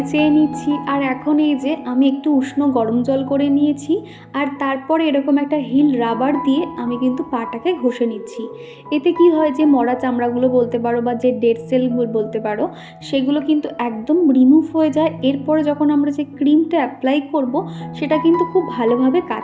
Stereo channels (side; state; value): both; identical; correlation 1.00